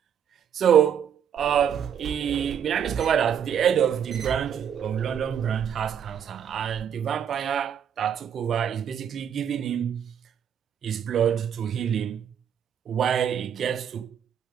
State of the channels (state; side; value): quieter; left; 8.5 dB